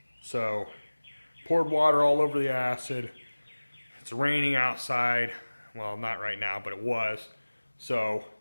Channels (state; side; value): inverted; both; correlation -1.00